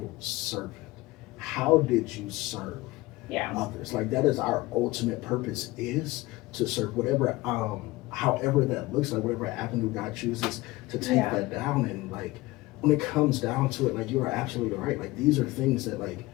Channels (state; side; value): quieter; right; 20.0 dB